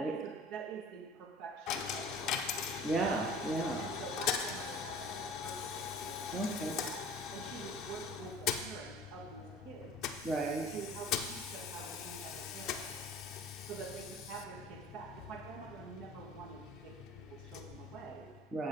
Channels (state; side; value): normal; both; correlation 0.44